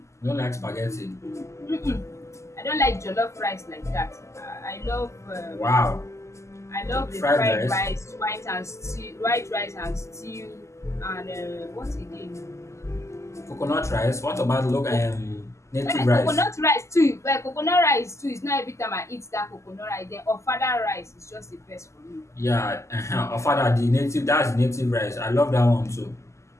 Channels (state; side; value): late; right; 0.14 ms